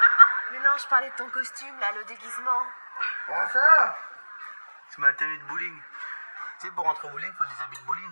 Mais non, je parlais de ton costume, là, le déguisement. Comment ça? C'est ma tenue de bowling. Tu sais, pour rentrer au bowling, faut des habits de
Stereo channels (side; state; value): both; inverted; correlation -1.00